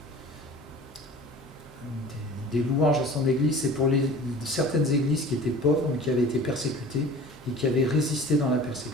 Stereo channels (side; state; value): both; normal; correlation 0.42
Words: des louanges à son église, c'est pour certaines églises qui étaient pauvres, mais qui avaient été persécutées et qui avaient résisté dans la